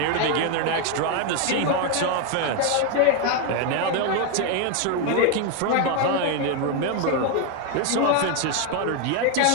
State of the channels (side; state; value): both; different; correlation 0.01